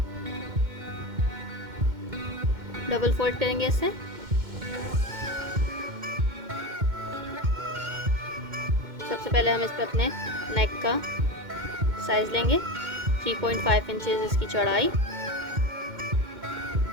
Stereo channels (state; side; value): late; left; 2.1 ms